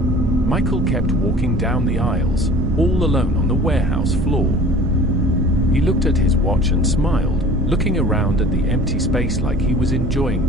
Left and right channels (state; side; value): noise; right; rumble, 3 dB below the sound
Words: Michael kept walking down the aisles, all alone on the warehouse floor. He looked at his watch and smiled, looking around at the empty space like he was enjoying